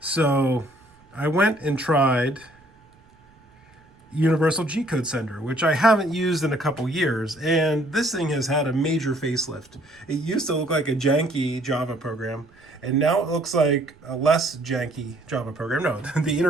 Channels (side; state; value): right; noise; rumble, 29 dB below the sound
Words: I went and tried Universal Gcode Sender, which I haven't used in a couple years, and this thing has had a major facelift. It used to look like a janky Java program, and now it looks like a less janky Java program. No, the